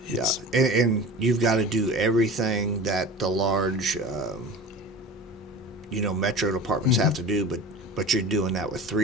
yeah, and you've got to do everything that the large, metro departments have to do, but you're doing that with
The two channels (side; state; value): both; normal; correlation 0.35